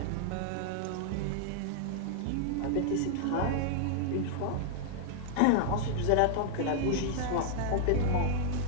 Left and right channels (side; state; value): both; different; correlation -0.01